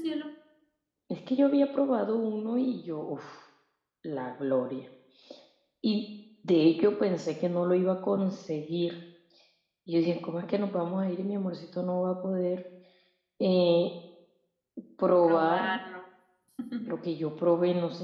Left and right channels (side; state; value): both; identical; correlation 1.00